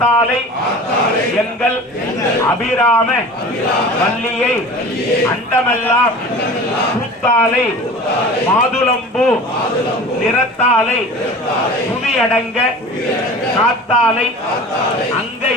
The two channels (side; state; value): both; normal; correlation 0.39